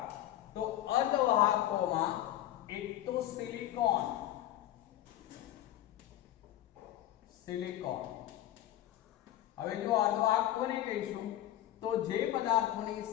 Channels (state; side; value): quieter; right; 13.2 dB